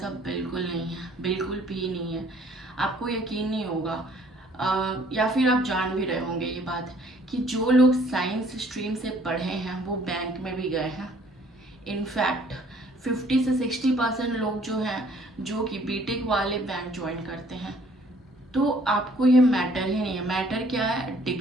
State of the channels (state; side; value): normal; both; correlation 0.59